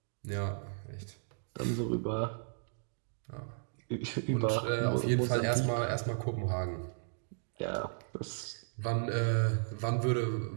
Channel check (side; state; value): left; silent; digital silence